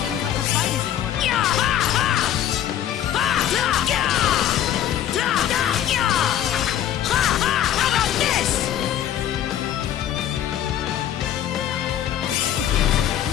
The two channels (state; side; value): quieter; right; 11.0 dB